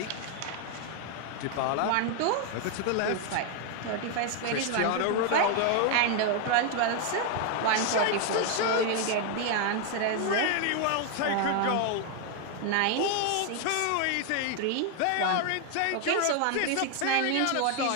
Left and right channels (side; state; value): both; different; correlation 0.00